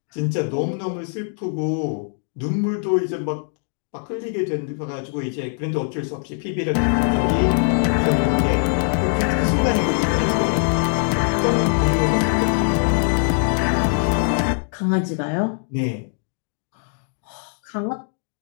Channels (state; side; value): silent; right; 64 dB below the other